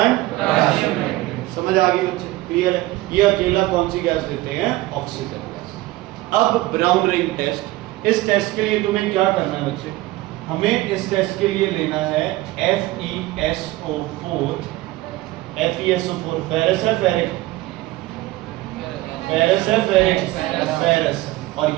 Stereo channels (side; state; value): left; quieter; 18.1 dB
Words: potassium nitrate. समझ आ गई बच्चे? क्लियर है? ये अकेला कौन सी गैस देते हैं? Oxygen gas. अब ब्राउन रिंग टेस्ट, इस टेस्ट के लिए तुम्हें क्या करना है बच्चे? हमें इस टेस्ट के लिए लेना है FeSO4। FeSO4 फेरस है, फेरिक? फेरस है, फेरिक? फेरस। और